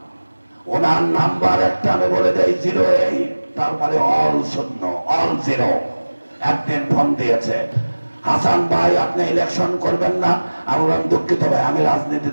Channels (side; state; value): both; inverted; correlation -1.00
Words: ওনার নাম্বার একটা আমি বলে দেই 08, তারপরে অল শূন্য, অল জিরো। একদিন ফোন দিয়েছে, হাসান ভাই আপনি ইলেকশন করবেন না? আমি বললাম দুঃখিত ভাই, আমি রাজনীতি